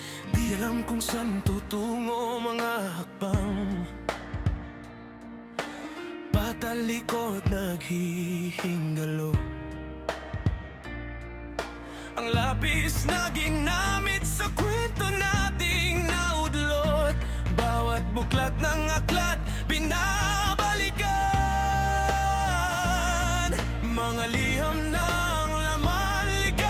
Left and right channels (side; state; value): both; identical; correlation 1.00